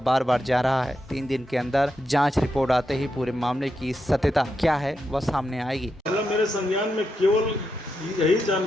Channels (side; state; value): both; normal; correlation 0.85